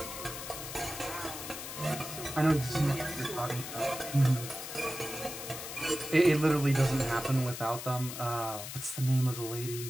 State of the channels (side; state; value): left; noise; hiss, 8 dB below the sound